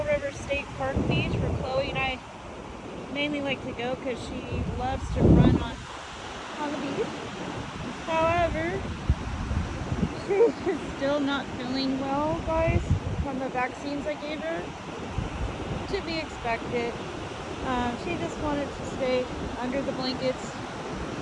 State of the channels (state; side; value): identical; both; correlation 1.00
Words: River State Park Beach, where Chloe and I mainly like to go because she loves to run on the beach. However, she is still not feeling well, guys, from the vaccines I gave her. To be expected. She just wanted to stay under the blankets